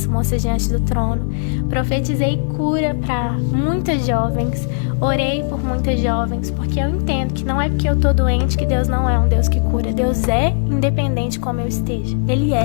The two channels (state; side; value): silent; right; digital silence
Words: Moças Diante do Trono. Profetizei cura para muitas jovens. Orei por muitas jovens, porque eu entendo que não é porque eu tô doente que Deus não é um Deus que cura. Deus é independente como eu esteja.